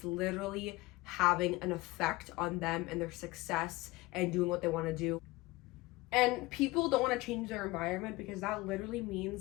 literally having an effect on them and their success and doing what they want to do. And people don't want to change their environment because that literally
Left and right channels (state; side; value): quieter; right; 21.1 dB